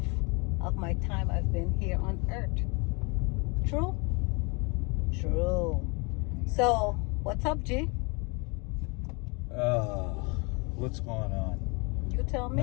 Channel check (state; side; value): quieter; right; 30.6 dB